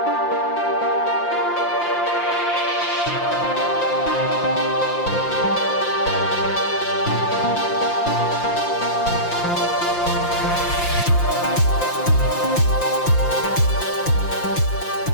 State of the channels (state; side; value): late; right; 5.8 ms